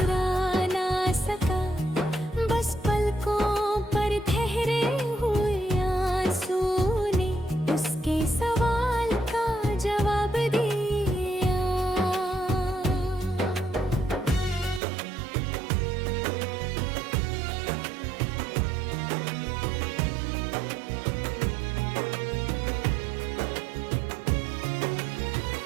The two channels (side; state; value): left; drops out; at 14.8 s